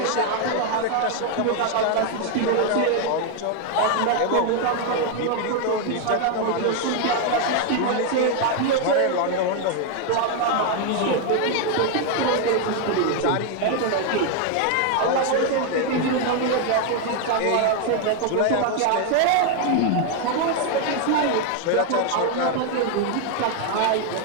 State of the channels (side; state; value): both; different; correlation 0.01